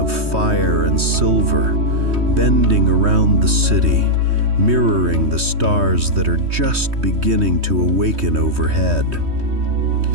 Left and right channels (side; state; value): left; late; 3.2 ms